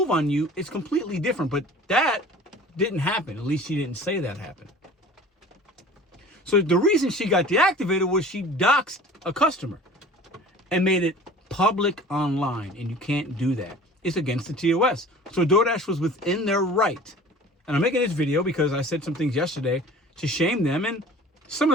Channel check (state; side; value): normal; both; correlation 0.43